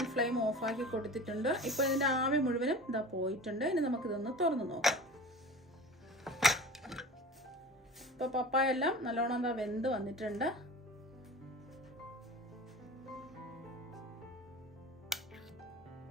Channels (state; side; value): normal; both; correlation 0.36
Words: ഫ്ലെയിം ഓഫാക്കി കൊടുത്തിട്ടുണ്ട്. ഇപ്പൊ ഇതിന്റെ ആവി മുഴുവനും ഇതാ പോയിട്ടുണ്ട്. ഇനി നമുക്കിതൊന്ന് തുറന്നു നോക്കാം. ഇപ്പൊ പപ്പായ എല്ലാം നല്ലോണം എന്താ വെന്ത് വന്നിട്ടുണ്ട്.